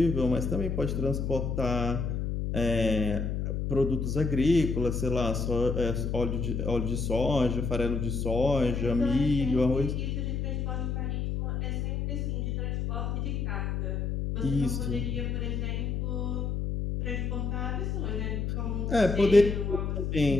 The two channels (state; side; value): noise; left; hum, 1 dB below the sound